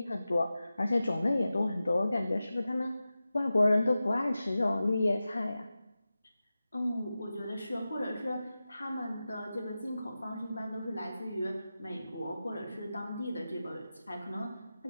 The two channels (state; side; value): inverted; both; correlation -0.94